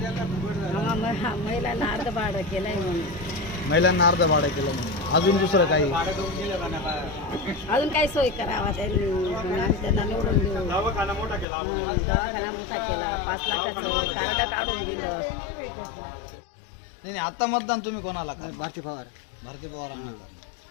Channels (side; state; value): right; drops out; at 11.5 s